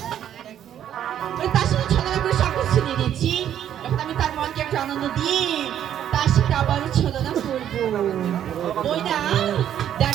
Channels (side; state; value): left; quieter; 10.3 dB